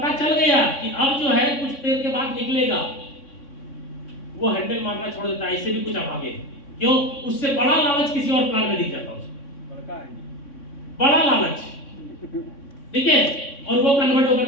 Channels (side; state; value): right; late; 3.6 ms